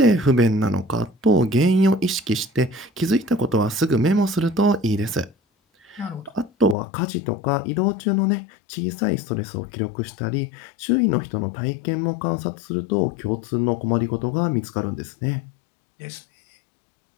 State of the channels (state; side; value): drops out; right; at 6.8 s